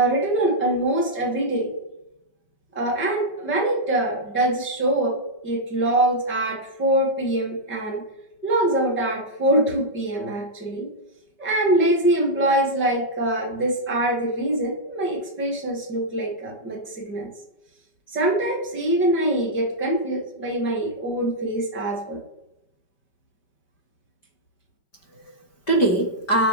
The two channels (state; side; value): late; right; 5.2 ms